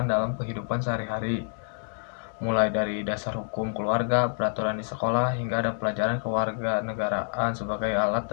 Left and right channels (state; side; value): silent; right; 60 dB below the other